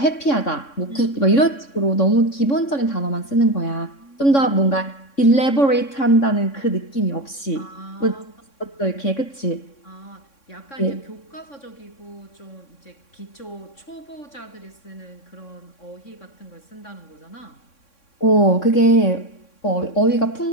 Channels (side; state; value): right; late; 3.6 ms